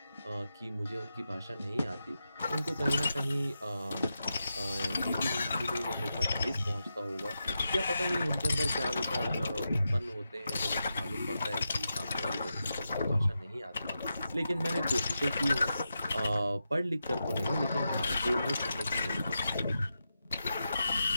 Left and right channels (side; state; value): both; inverted; correlation -0.88